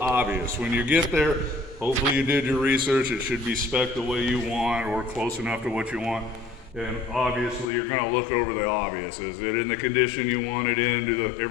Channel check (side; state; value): right; drops out; at 7.7 s